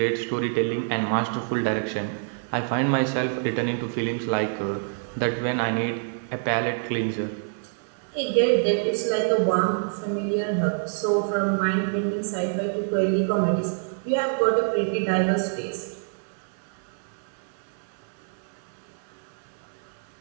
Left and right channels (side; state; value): left; silent; 61 dB below the other